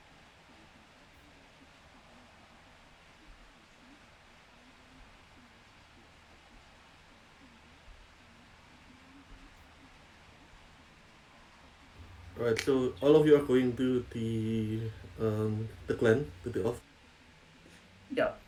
Alright, so all of you are going to the clan, to the office. Yeah.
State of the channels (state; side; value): identical; both; correlation 1.00